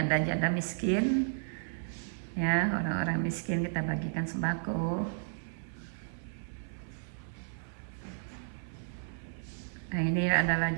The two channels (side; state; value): left; silent; 56 dB below the other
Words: miskin ya, orang-orang miskin kita bagikan sembako. Nah, ini adalah